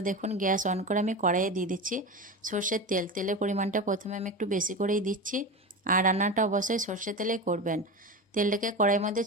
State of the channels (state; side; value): normal; both; correlation 0.25